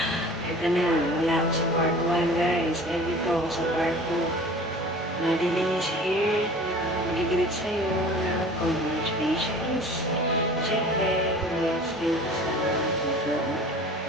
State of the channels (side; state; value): both; normal; correlation 0.43